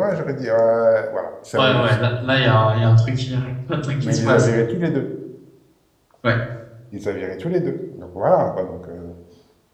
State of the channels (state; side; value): identical; both; correlation 1.00